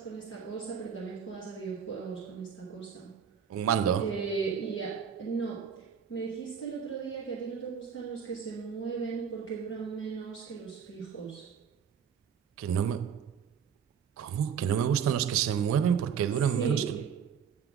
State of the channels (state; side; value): quieter; left; 7.4 dB